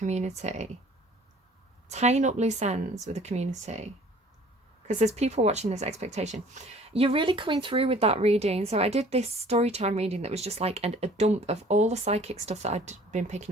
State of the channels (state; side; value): normal; both; correlation 0.52